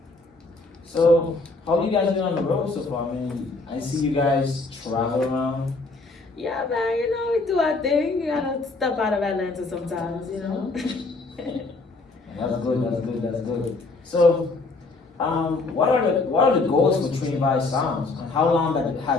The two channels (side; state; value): right; quieter; 3.5 dB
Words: So how you guys doing on the road so far? I mean, I see you guys travel around. Yeah, man, we do our thing. You gotta step out of Atlanta sometimes. That's good, that's good, that's good. So, what are the goals for Trinivibez Soundz? And how long